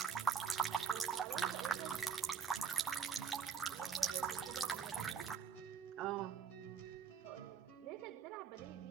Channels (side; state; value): left; quieter; 6.6 dB